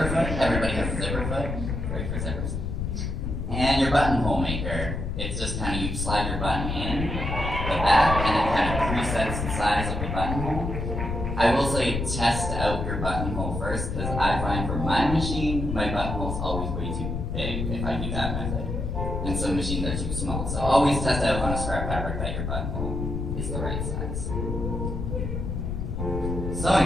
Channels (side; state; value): left; noise; rumble, 3 dB below the sound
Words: foot, everybody has a zipper foot, great for zippers. And your buttonhole maker, it's just kind of, you slide your button in the back, and it kind of presets the size of your buttonhole. I will say test out your buttonhole first, because I find for my machine, my buttonhole's always way too big if I do that method. And some machines are too small. So always test out on a scrap fabric that your buttonhole is the right size.